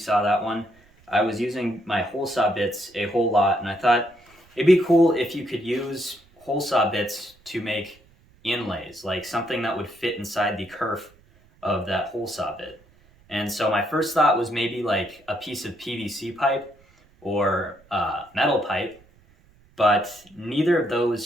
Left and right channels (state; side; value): noise; right; rumble, 30 dB below the sound